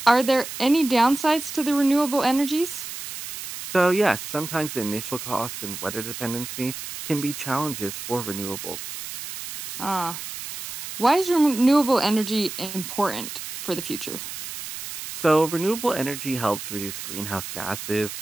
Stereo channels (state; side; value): noise; right; hiss, 9 dB below the sound